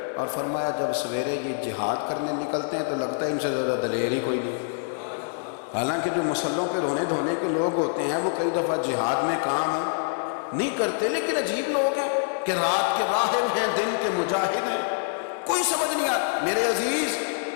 اور فرمایا جب سویرے یہ جہاد کرنے نکلتے ہیں تو لگتا ہے ان سے زیادہ دلیر ہی کوئی نہیں، حالانکہ جو مسلوں پہ رونے دھونے کے لوگ ہوتے ہیں وہ کئی دفعہ جہاد میں کام نہیں کرتے، لیکن عجیب لوگ ہیں کہ رات کے راہب ہیں، دن کے مجاہد ہیں، کوئی سمجھ نہیں آتا۔ میرے عزیز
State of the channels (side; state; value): right; silent; digital silence